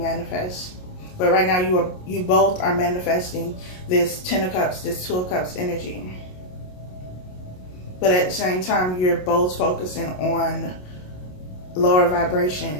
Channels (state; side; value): late; right; 27 ms